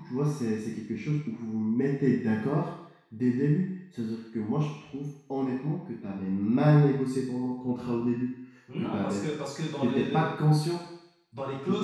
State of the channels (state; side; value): identical; both; correlation 1.00